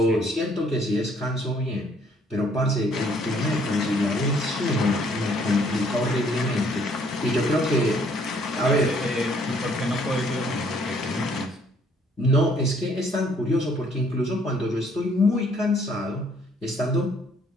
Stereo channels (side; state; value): both; normal; correlation 0.63